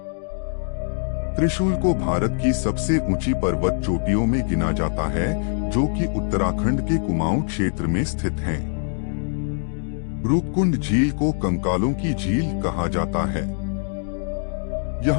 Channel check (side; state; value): right; silent; digital silence